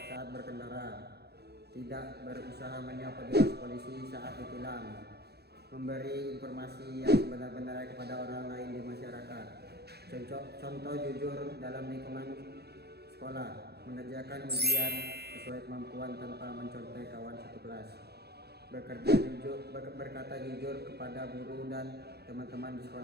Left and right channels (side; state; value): left; late; 0.47 ms